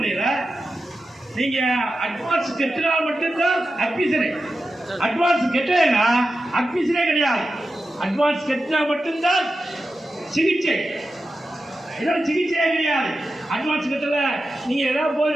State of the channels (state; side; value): normal; both; correlation 0.91